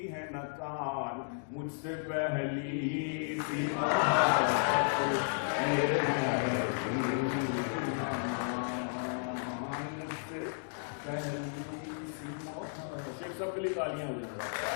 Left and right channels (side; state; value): right; silent; digital silence